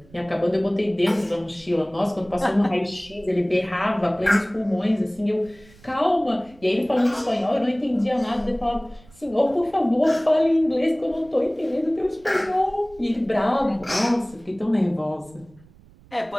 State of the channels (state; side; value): noise; right; rumble, 26 dB below the sound